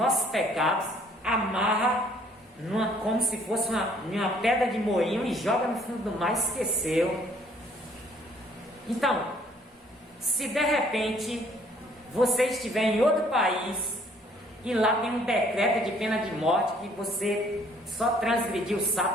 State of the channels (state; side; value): normal; both; correlation 0.61